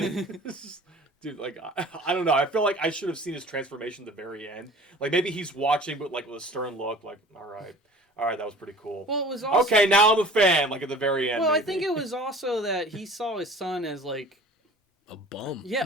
Dude, like, I don't know. I feel like I should have seen his transformation at the very end. Like, maybe he's watching, but like with a stern look, like, all right, that was pretty cool. Well, it was also... Okay, now I'm a fan, like at the very end. Well, maybe. I think it was also that he saw his son as like, a bum. Yeah,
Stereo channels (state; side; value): normal; both; correlation 0.44